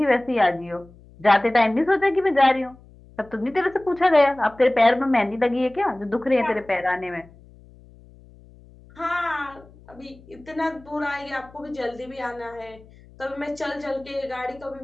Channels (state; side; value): noise; left; hum, 24 dB below the sound